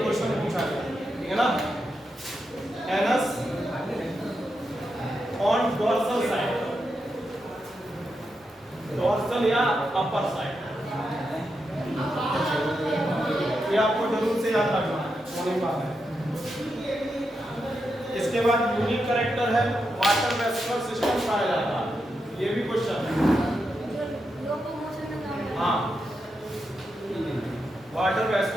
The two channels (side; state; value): both; normal; correlation 0.86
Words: क्वेश्चन पूछा गया, ठीक है ना? Anus on dorsal side, dorsal या अपर साइड, ये आपको जरूर से याद रखना है, वही बात है। इसके बाद यूनिक कैरेक्टर है वाटर वेस्कुलर सिस्टम पाया जाता है, ये भी क्वेश्चन है। लोकोमोशन में काम है। हाँ, वाटर